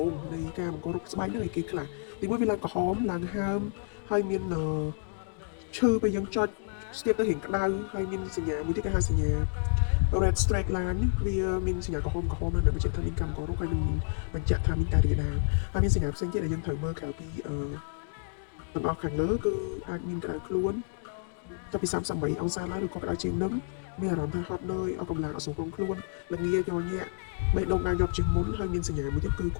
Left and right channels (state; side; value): silent; right; digital silence